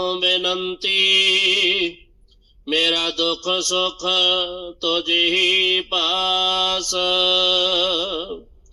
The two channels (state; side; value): identical; both; correlation 1.00